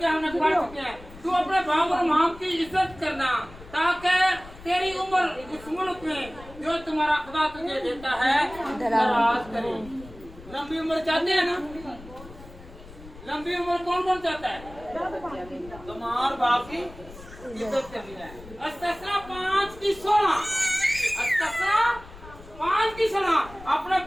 हमने पढ़ चुके हैं। तू अपने बाप और माँ की इज्जत करना ताकि तेरी उम्र उस मुल्क में जो तुम्हारा खुदा तुझे देता है दराज करे। लंबी उम्र चाहते हैं ना? लंबी उम्र कौन कौन चाहता है? तो माँ और बाप की इज्जत करनी है। अस्तिया 5 की 16। अस्तिया 5 की 16। अपने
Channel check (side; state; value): left; noise; rumble, 18 dB below the sound